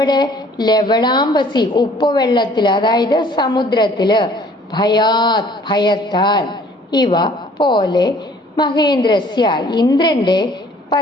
ലവണാംബസി ഉപ്പുവെള്ളത്തിൽ, അതായത് സമുദ്രത്തില്, ഭയാത് ഭയത്താൽ, ഇവ പോലെ, മഹേന്ദ്രസ്യ ഇന്ദ്രന്റെ,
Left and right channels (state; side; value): normal; both; correlation 0.55